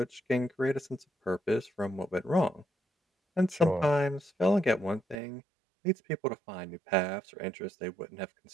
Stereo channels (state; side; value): drops out; left; at 5.2 s